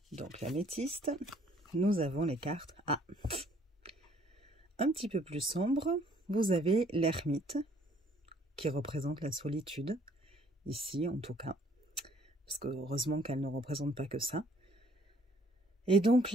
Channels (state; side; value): normal; both; correlation 0.61